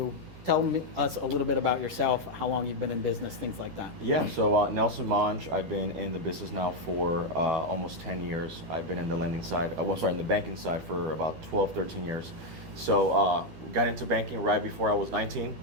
Tell us a little bit about yourself, how long you've been in business, things like that. Yeah, so Nelson Monge, I've been in the business now for almost 10 years. I've been in the lending side, in the banking side for about 12, 13 years. So got into banking right before I was 19,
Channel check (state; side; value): late; left; 12 ms